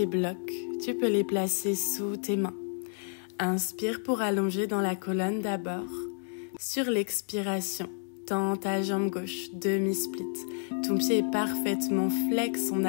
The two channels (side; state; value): right; silent; digital silence